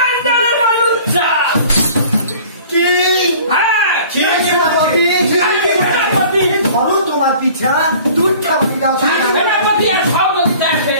লুচ্চা। কি? হ্যাঁ, সেনাপতি ধরো তোমার পিছা দুধ খাবারি দাও। সেনাপতি আর সহযোগিতা এসে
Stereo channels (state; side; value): inverted; both; correlation -0.48